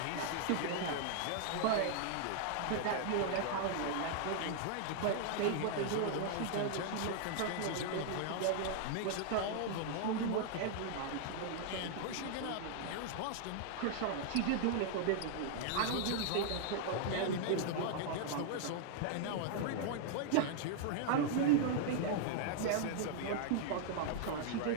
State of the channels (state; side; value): different; both; correlation -0.01